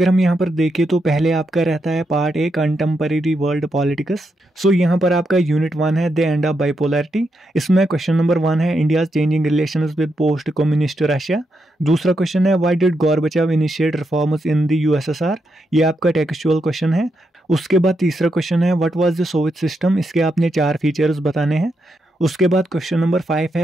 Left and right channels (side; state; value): both; normal; correlation 0.83